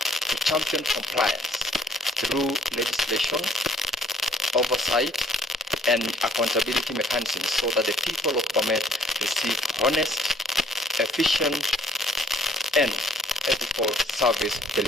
to champion compliance through legislation, oversight, and accountability mechanisms so that the people of Bomet receive honest, efficient, and ethical service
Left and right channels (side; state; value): both; normal; correlation 0.61